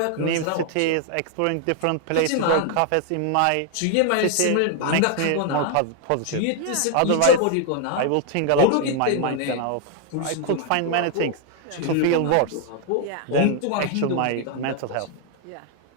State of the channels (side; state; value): both; different; correlation 0.00